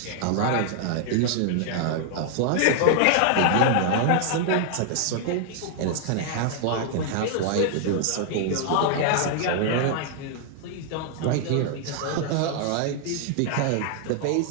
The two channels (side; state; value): both; different; correlation 0.00